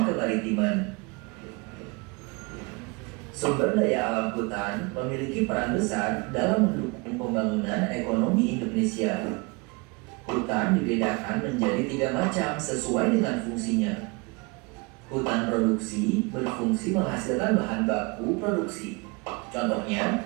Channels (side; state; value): left; quieter; 28.2 dB